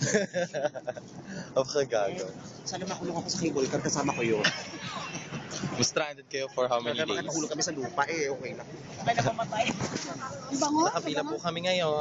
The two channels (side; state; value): both; identical; correlation 1.00